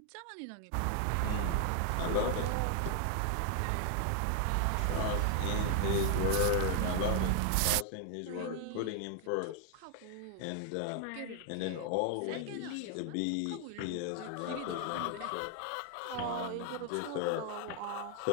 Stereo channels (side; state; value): both; different; correlation 0.00